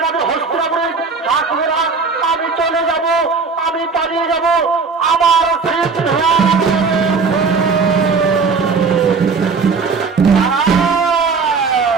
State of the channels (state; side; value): quieter; left; 4.8 dB